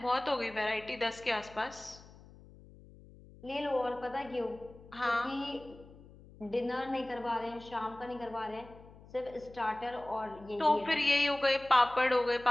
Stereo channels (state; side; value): noise; left; hum, 21 dB below the sound